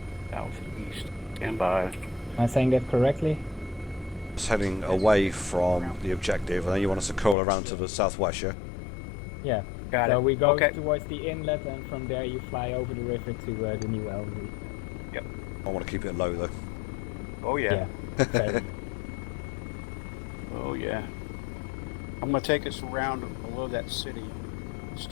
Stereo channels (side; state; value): right; drops out; at 7.4 s